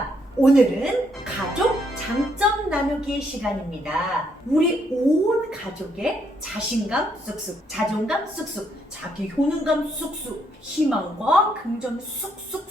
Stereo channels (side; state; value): both; normal; correlation 0.73